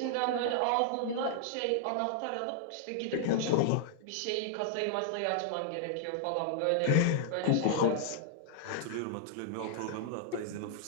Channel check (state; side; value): different; both; correlation -0.01